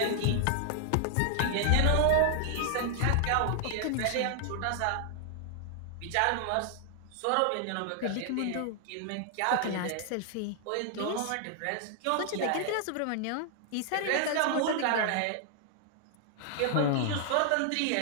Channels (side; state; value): both; different; correlation 0.00